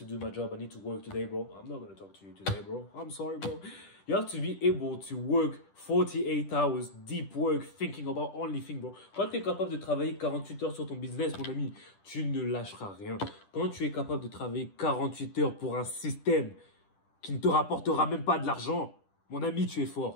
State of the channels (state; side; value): late; right; 10 ms